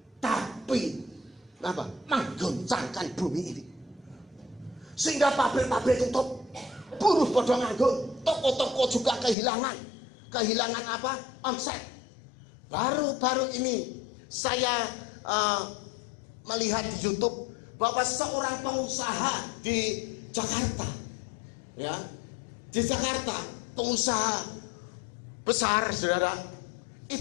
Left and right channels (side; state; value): right; drops out; at 9.3 s